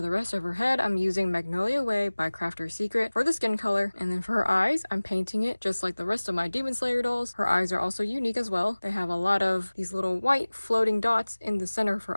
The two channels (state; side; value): inverted; both; correlation -1.00